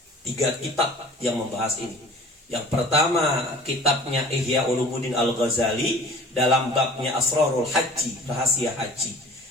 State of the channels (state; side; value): normal; both; correlation 0.45